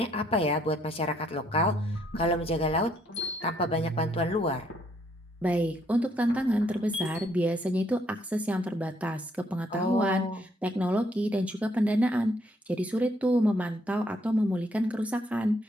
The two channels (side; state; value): both; normal; correlation 0.70